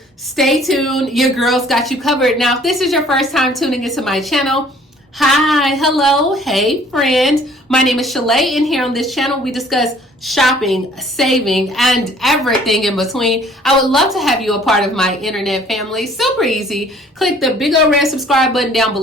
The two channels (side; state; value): both; normal; correlation 0.55